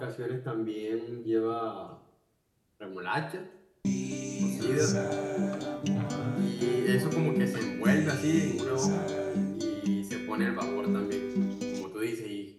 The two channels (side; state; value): both; identical; correlation 1.00